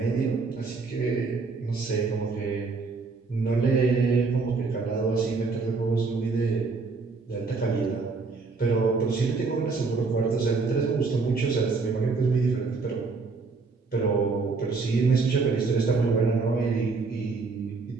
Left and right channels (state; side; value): quieter; left; 4.3 dB